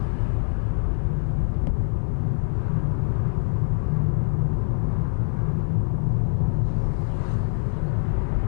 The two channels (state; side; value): silent; right; 63 dB below the other